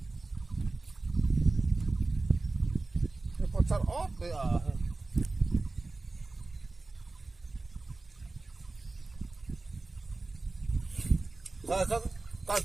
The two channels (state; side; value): quieter; left; 3.4 dB